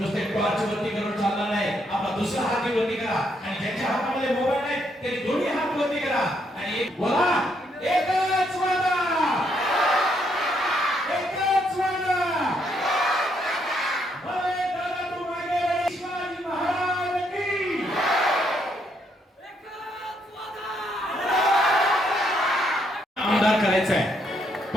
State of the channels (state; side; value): normal; both; correlation 0.74